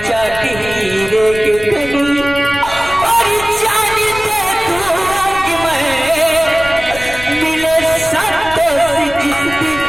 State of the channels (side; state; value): left; noise; rumble, 14 dB below the sound